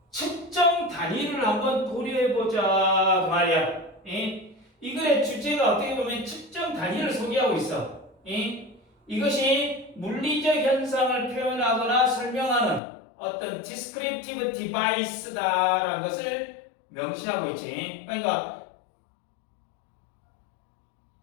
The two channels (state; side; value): drops out; right; at 12.8 s